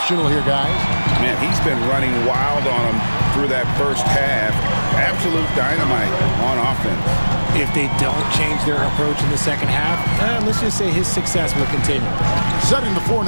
here, guys. Man, he's been running wild on them through that first half. Absolute dynamite on offense. If they don't change their approach in the second half, let's just say his success will continue. Setting the floor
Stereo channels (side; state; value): both; inverted; correlation -1.00